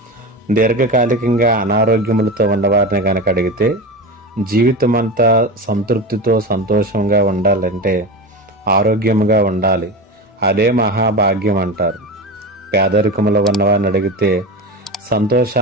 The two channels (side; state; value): both; normal; correlation 0.24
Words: దీర్ఘకాలికంగా అనారోగ్యములతో ఉన్నవారిని కనుక అడిగితే జీవితం అంతా సంతృప్తితో సంతోషంగా ఉండాలంటే ఆరోగ్యంగా ఉండాలి, అదే మహాభాగ్యం అంటారు. పేదరికములో ఉన్నవారిని అడిగితే